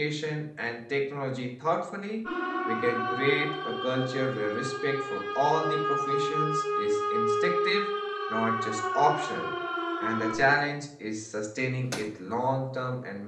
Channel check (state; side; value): identical; both; correlation 1.00